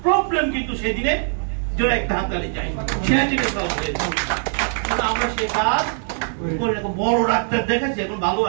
প্রবলেম কিন্তু সেদিনে জোরে একটা হাততালি চাই, সেদিনে সলভ হয়ে যেত। আমরা সে কাজ করে রাখবো। বড় ডাক্তার দেখেছি, এখন ভালো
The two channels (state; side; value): silent; left; digital silence